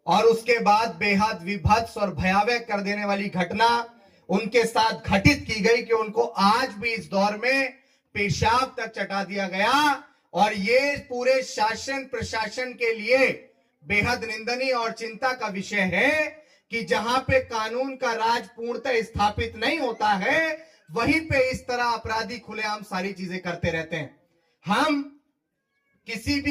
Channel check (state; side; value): identical; both; correlation 1.00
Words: और उसके बाद बेहद विभत्स और भयावह कर देने वाली घटना उनके साथ घटित की गई कि उनको आज भी इस दौर में पेशाब तक चटा दिया गया। और ये पूरे शासन प्रशासन के लिए बेहद निंदनीय और चिंता का विषय है कि जहां पे कानून का राज पूर्णतः स्थापित नहीं होता है, वहीं पे इस तरह अपराधी खुलेआम सारी चीजें करते रहते हैं। हम किसी